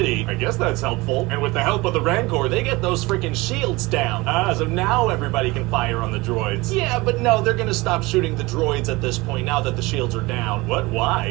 I guess that's helpful. And with the help of the Rancor, they get those freaking shields down. So now everybody can fire on the droids. Yeah, but no, they're gonna stop shooting the droids at this point now that the shields are down. What?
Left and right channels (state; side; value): quieter; left; 22.4 dB